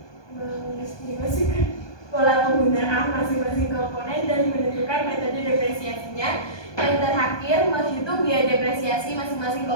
pola penggunaan masing-masing komponen dan menentukan metode depresiasinya. Yang terakhir, menghitung biaya depresiasi masing-masing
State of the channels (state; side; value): late; right; 1.2 ms